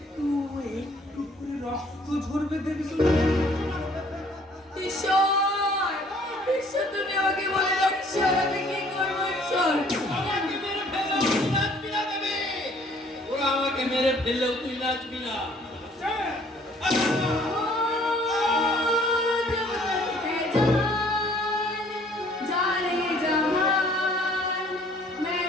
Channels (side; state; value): both; normal; correlation 0.58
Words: একটু করে রক্ত ঝরবে দেবী। ঈশ্বর, ঈশ্বর তুমি আমাকে বলে দাও, ঈশ্বর আমি কি করবো ঈশ্বর? আমাকে মেরে ফেললেও তুই নাচবি না দেবে। ওরা আমাকে মেরে ফেললেও তুই নাচবি না। जाने जहान मैं